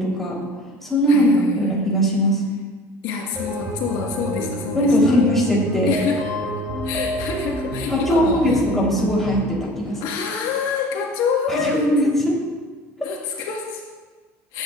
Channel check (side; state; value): both; normal; correlation 0.43